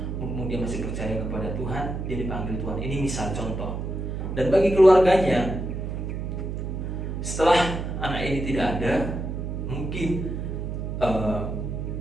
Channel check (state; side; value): noise; right; hum, 4 dB below the sound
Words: mumpung dia masih percaya kepada Tuhan, dia dipanggil Tuhan. Ini misal contoh. Dan bagi keluarganya, setelah anak ini tidak ada, mungkin